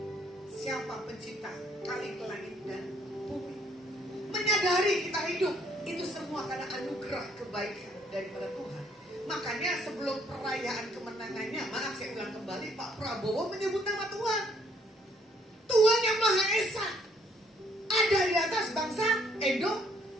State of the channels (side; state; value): both; normal; correlation 0.66